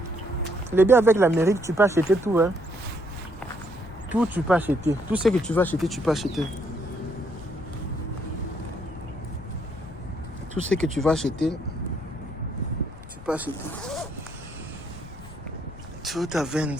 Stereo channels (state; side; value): noise; left; rumble, 16 dB below the sound